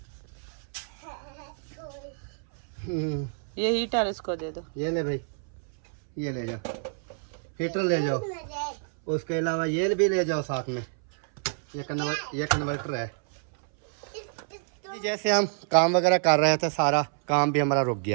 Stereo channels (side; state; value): left; silent; 59 dB below the other